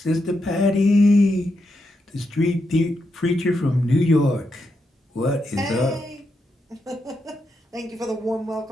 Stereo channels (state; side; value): normal; both; correlation 0.84